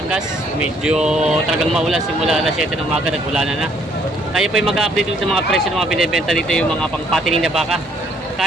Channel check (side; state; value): both; normal; correlation 0.65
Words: Medyo talagang maulan simula alas 7 ng umaga, nag-ulanan na. Tayo po yung mag-update dito sa mga presyo ng mga binibenta dito, yung mga pang-patining na baka.